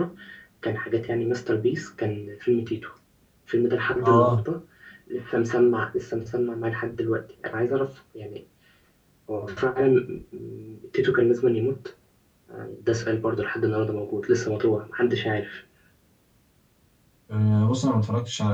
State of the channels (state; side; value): identical; both; correlation 1.00